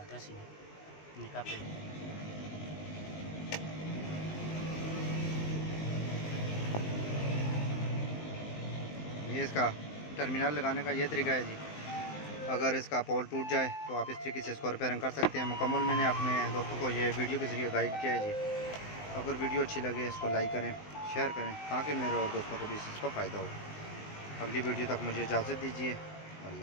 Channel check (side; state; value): right; late; 19 ms